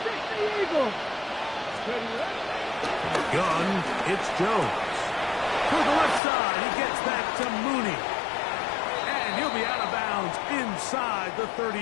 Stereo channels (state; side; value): drops out; right; at 6.2 s